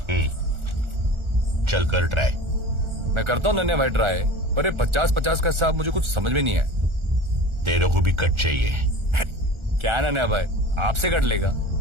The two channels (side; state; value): left; late; 1.4 ms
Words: चल कर ट्राई। मैं करता हूँ नन्हे भाई ट्राई, पर ये 50-50 का हिसाब मुझे कुछ समझ में नहीं है। तेरे को भी कट चाहिए? क्या नन्हे भाई, आपसे कट लेगा?